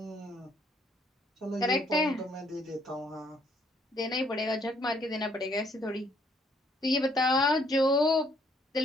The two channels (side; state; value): both; normal; correlation 0.66